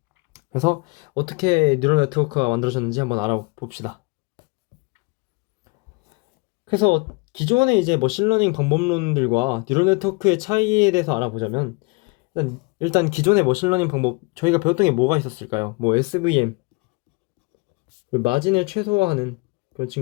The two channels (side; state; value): right; quieter; 28.0 dB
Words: 그래서 어떻게 뉴럴 네트워크가 만들어졌는지 한번 알아봅시다. 그래서 기존의 이제 머신러닝 방법론들과 뉴럴 네트워크의 차이에 대해서 알아보자면, 일단 기존의 머신러닝 방법, 저희가 배웠던 게 뭐가 있었을까요? SVM, 그리고 마진을 최소화하는 그런